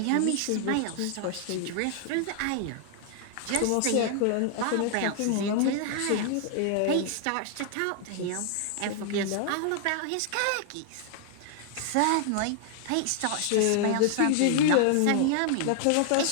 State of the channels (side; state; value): both; different; correlation 0.00